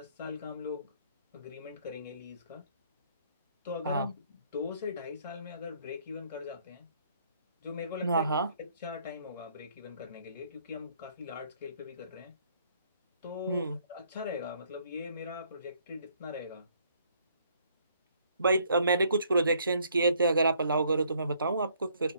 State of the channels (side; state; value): both; inverted; correlation -0.65